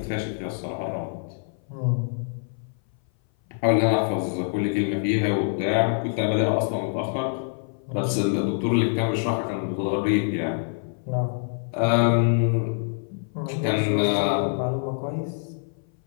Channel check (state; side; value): silent; right; 58 dB below the other